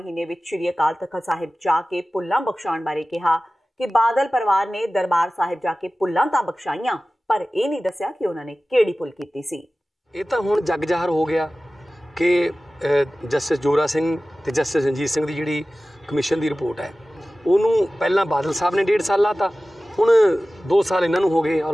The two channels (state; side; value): normal; both; correlation 0.96